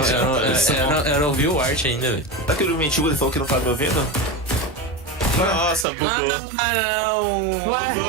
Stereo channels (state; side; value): drops out; left; at 5.9 s